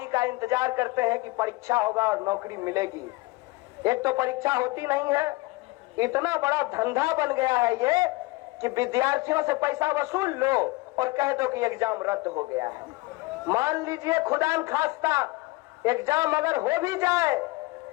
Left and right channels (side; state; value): right; quieter; 22.5 dB